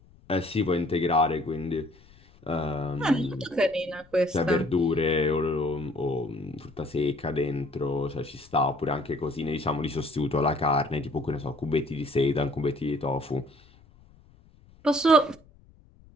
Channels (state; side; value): noise; left; rumble, 27 dB below the sound